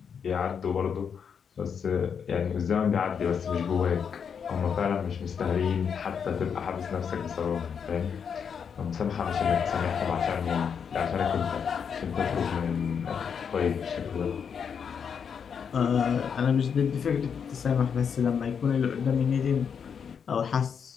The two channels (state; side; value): quieter; right; 7.0 dB